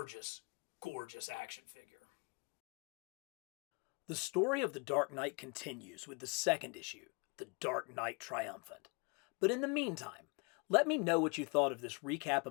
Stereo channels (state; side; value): quieter; right; 32.2 dB